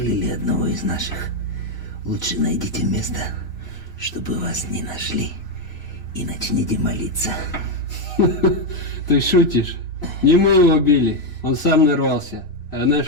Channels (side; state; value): right; late; 3.0 ms